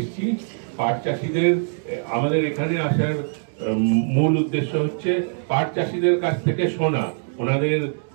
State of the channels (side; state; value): left; silent; digital silence